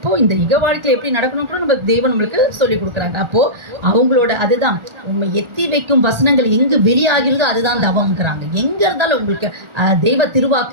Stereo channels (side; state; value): left; late; 1.4 ms